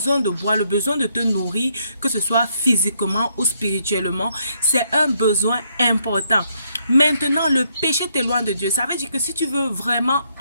de boire, le besoin de te nourrir, que ce soit physiquement ou spirituellement, c'est un besoin important. Maintenant, le péché t'éloigne de Dieu. Ça veut dire que si tu veux vraiment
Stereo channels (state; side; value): inverted; both; correlation -0.74